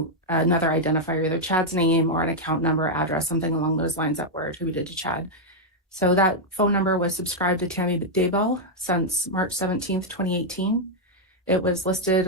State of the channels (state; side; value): normal; both; correlation -0.02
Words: another identifier, either Chad's name or an account number, address, something along those lines that were attributed to Chad. So that phone number was subscribed to Tammy Daybell since March 17th, 2018. It was